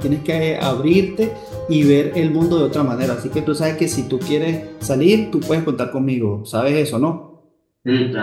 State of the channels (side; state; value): both; identical; correlation 1.00